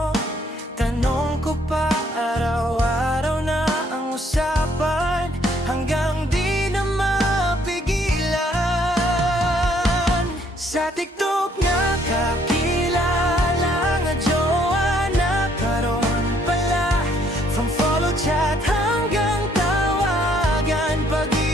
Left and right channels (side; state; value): both; normal; correlation 0.66